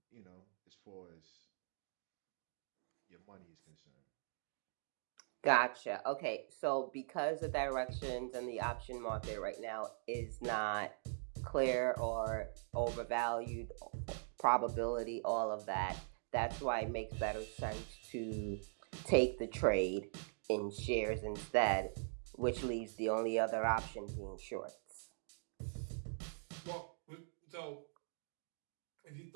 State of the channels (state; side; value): silent; left; digital silence